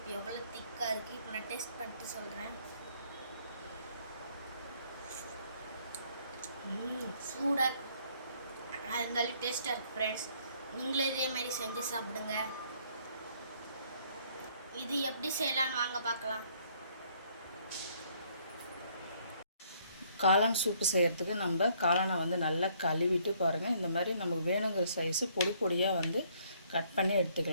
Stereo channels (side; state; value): both; inverted; correlation -0.65